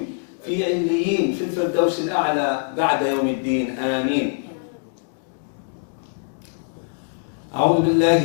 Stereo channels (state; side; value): silent; right; digital silence